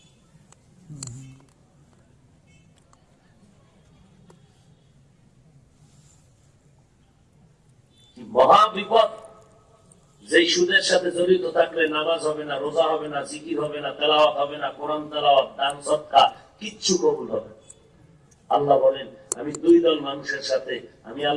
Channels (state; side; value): identical; both; correlation 1.00